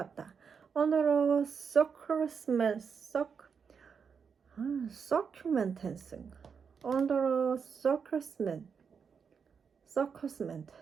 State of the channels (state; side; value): quieter; left; 6.3 dB